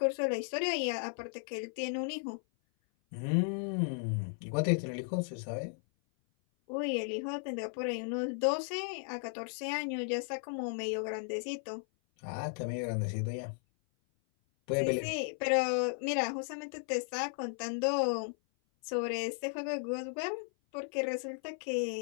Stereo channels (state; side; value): silent; right; 54 dB below the other